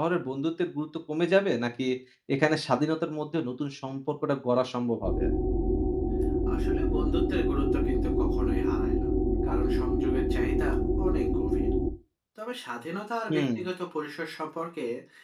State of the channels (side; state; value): both; identical; correlation 1.00